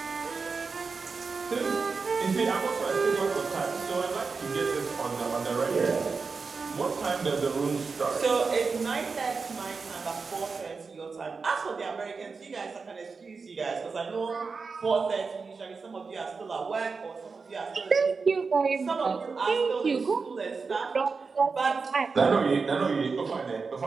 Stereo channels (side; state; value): left; quieter; 4.7 dB